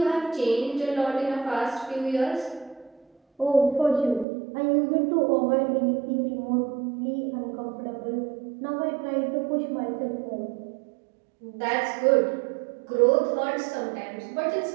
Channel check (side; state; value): left; drops out; at 4.2 s